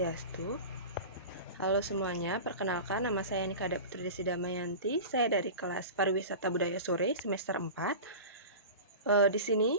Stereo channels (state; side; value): inverted; both; correlation -0.32